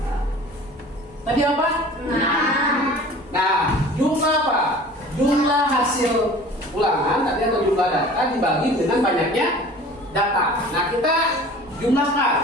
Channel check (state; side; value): normal; both; correlation 0.44